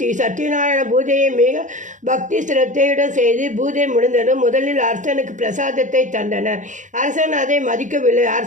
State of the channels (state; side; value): late; left; 0.36 ms